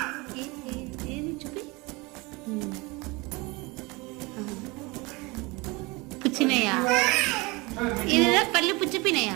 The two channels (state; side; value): quieter; left; 25.1 dB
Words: ఏది చూపి. పుచ్చినాయా? ఇదేదా పళ్ళు